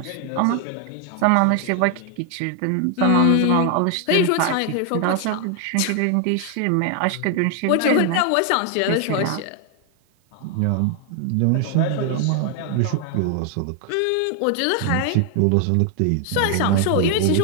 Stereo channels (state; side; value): different; both; correlation 0.00